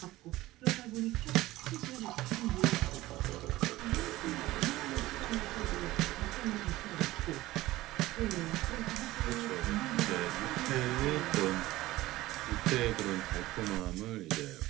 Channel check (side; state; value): left; quieter; 17.4 dB